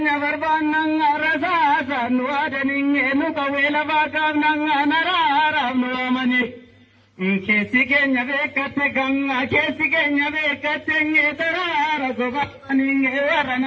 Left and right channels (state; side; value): identical; both; correlation 1.00